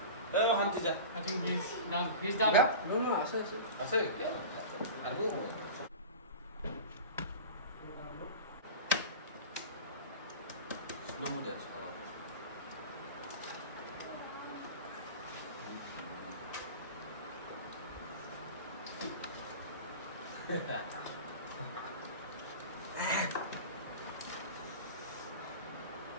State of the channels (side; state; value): both; inverted; correlation -0.33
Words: I think he's done. He's done. আছে আৰু slow mo dance